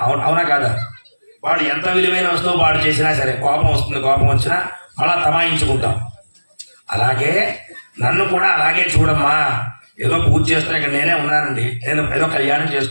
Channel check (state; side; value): inverted; both; correlation -1.00